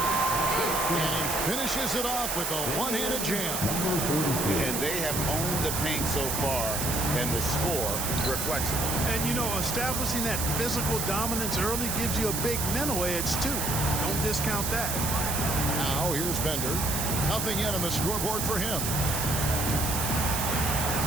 And he finishes it off with a one-handed jam. And they have owned the paint so far, and the score reflects it. And, you know, establishing that physical dominance early gives you a big mental edge, too. Don't discount that. Now, here's Bender. Nothing yet on the scoreboard for him.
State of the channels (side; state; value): right; noise; hiss, 1 dB below the sound